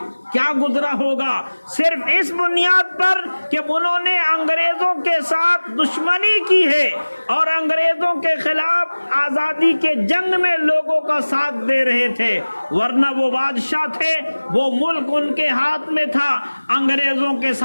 کیا گزرا ہوگا، صرف اس بنیاد پر کہ انہوں نے انگریزوں کے ساتھ دشمنی کی ہے اور انگریزوں کے خلاف آزادی کے جنگ میں لوگوں کا ساتھ دے رہے تھے، ورنہ وہ بادشاہ تھے، وہ ملک ان کے ہاتھ میں تھا، انگریزوں کے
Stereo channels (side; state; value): both; inverted; correlation -1.00